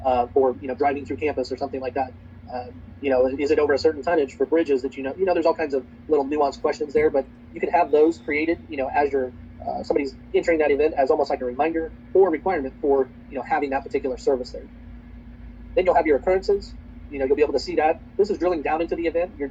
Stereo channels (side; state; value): both; identical; correlation 1.00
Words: for, driving through campus or something like that. Is it over a certain tonnage for bridges that, there's all kinds of little nuanced questions there, but you can have those created, as you're somebody's entering that event as almost like a reminder or requirement for, having that particular service there. Then you'll have your occurrences. You'll be able to see that. This is drilling down into the event. Your